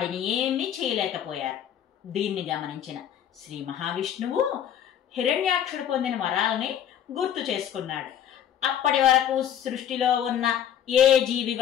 ఏమీ చేయలేకపోయారు. దీన్ని గమనించిన శ్రీ మహావిష్ణువు హిరణ్యాక్షుడు పొందిన వరాలని గుర్తు చేసుకున్నాడు. అప్పటి వరకు సృష్టిలో ఉన్న ఏ జీవి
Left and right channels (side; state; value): right; quieter; 9.8 dB